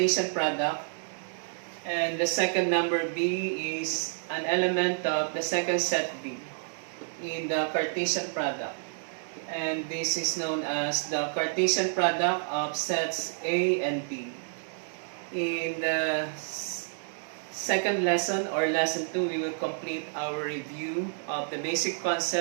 product, and the second number B is an element of the second set B in the Cartesian product. And this is known as the Cartesian product of sets A and B. In the second lesson, or lesson 2, we will complete our review of the basic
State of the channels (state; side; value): silent; left; digital silence